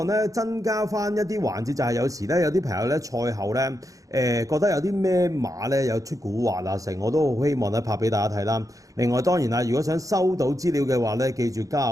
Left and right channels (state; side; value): late; left; 0.16 ms